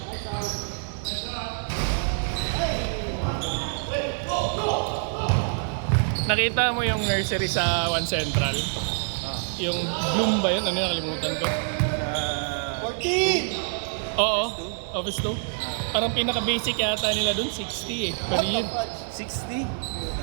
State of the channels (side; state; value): left; silent; digital silence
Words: Nakita mo yung nursery sa One Central? Yung Bloom ba yun? Ano yung nakalimutan ko? 14! Oo, Office 2. Parang pinaka-basic yata nila dun, 60 per year. 60?